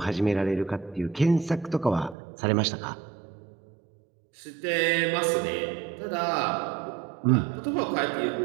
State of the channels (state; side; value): drops out; left; at 2.1 s